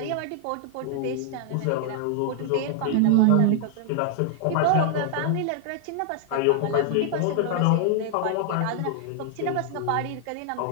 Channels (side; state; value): both; different; correlation 0.00